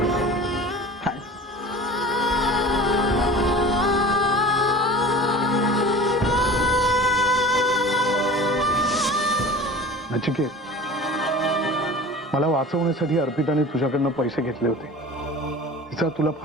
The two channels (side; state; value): both; normal; correlation 0.39